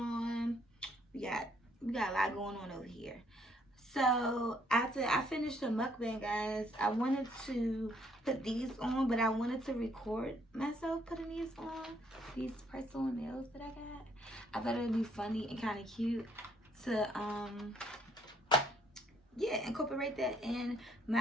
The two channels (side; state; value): both; normal; correlation 0.66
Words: We got a lot going on over here. So after I finished the mukbang, guys, I wanted to put these on, but I wanted to record myself putting these on, these press-on nails that I got. I thought it would be funny and kind of cute to incorporate that in